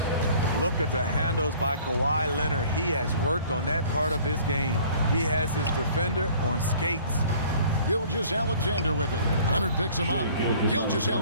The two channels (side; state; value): both; inverted; correlation -0.52